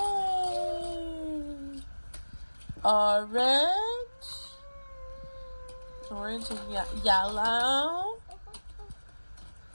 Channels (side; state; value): both; inverted; correlation -1.00